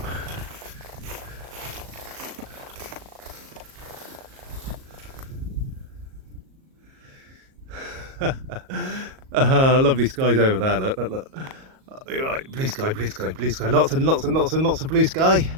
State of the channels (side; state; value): left; late; 38 ms